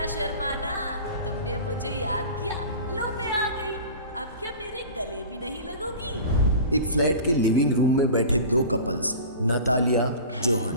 शर्माना, तुमने मुझे याद किया, लो मैं आ गई। अब क्या मेरे गले भी नहीं लगोगी? एक फ्लैट के लिविंग रूम में बैठे दो कपल्स नतालिया जोहन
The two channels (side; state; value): both; inverted; correlation -0.36